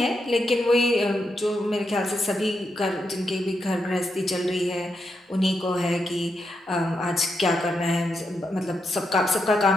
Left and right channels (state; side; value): normal; both; correlation 0.84